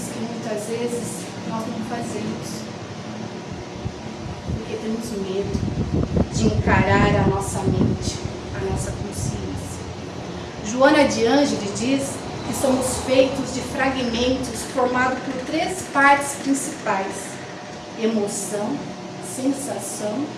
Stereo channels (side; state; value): both; identical; correlation 1.00